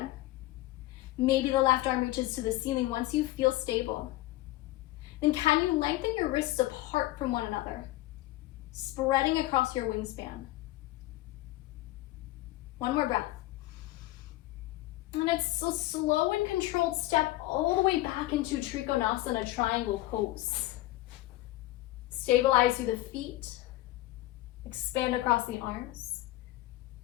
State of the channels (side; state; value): right; quieter; 17.3 dB